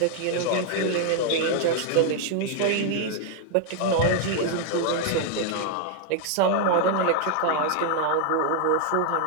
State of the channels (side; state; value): both; different; correlation 0.00